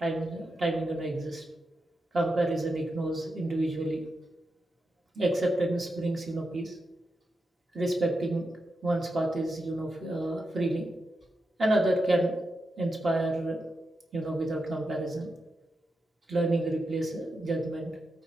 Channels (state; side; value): normal; both; correlation 0.87